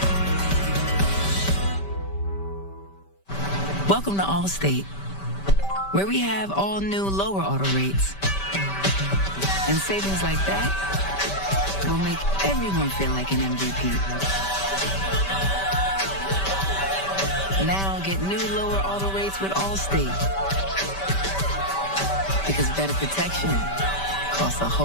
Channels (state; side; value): late; right; 5.1 ms